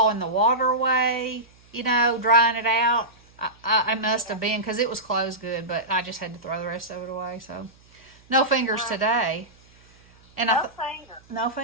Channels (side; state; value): right; noise; hum, 29 dB below the sound